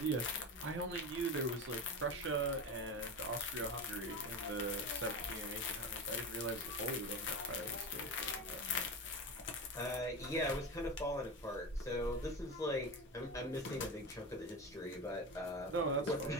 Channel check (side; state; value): both; normal; correlation 0.24